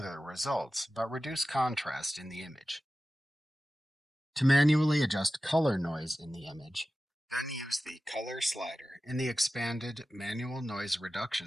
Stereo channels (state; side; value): normal; both; correlation 0.95